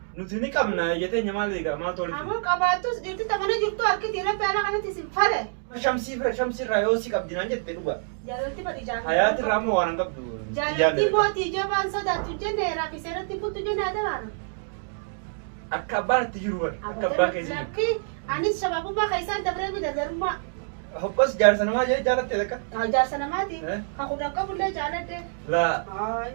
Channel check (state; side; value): silent; left; digital silence